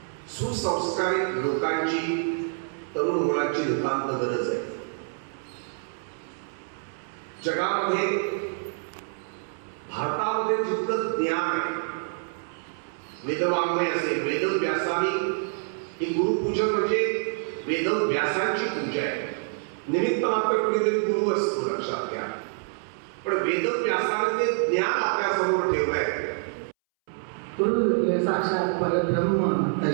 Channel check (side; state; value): left; silent; 60 dB below the other